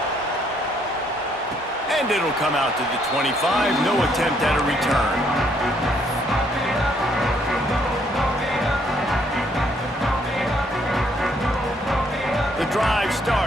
And it'll come out to the 25. No attempt at a return. The drive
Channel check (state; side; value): normal; both; correlation 0.69